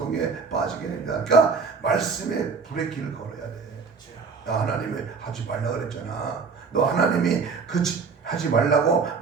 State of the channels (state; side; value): quieter; left; 5.1 dB